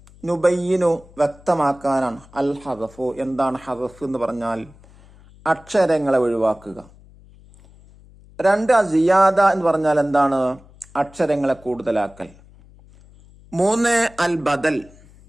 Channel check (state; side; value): noise; left; hum, 25 dB below the sound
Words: നുബയ്യിനു വ്യക്തമാക്കാനാണ്. അൽ ഹദഫു, എന്താണ് ഹദഫ് എന്ന് പറഞ്ഞാൽ അക്ഷരങ്ങളെ ഒഴിവാക്കുക. 2 സിയാദ എന്ന് പറഞ്ഞാൽ എന്താണ്? അക്ഷരങ്ങളെ കൂടുതലാക്കൽ. 3 അൽ ബദൽ,